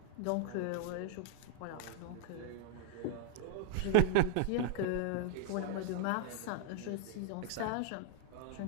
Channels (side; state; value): both; different; correlation -0.01